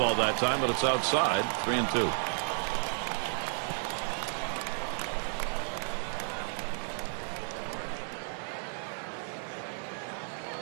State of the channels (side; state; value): left; silent; 56 dB below the other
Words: that time, but it's outside, 3-2.